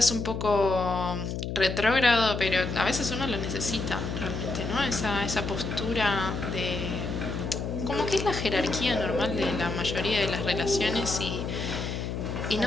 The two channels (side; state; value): left; noise; hum, 4 dB below the sound